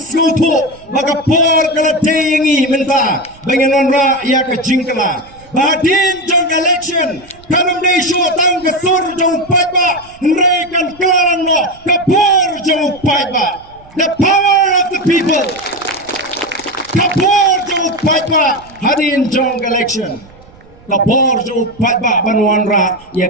baga por kala teyengi menta bangin onra ia ka jingkala Badin jong election kanam dei shu tang ke sur jong paiba nrei kan klaran no kapor jong paiba the power of the people kapor jong paiba hadin jong election kapor jong paiba banwan ra ya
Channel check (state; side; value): noise; right; rumble, 25 dB below the sound